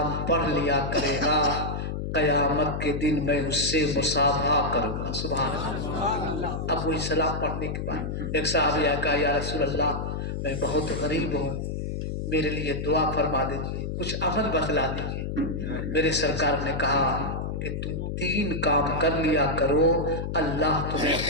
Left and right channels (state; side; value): noise; left; hum, 3 dB below the sound